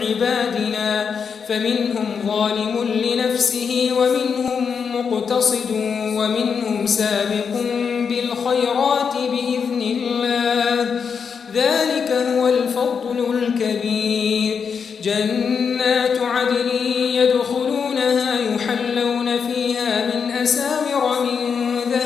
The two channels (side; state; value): right; quieter; 6.3 dB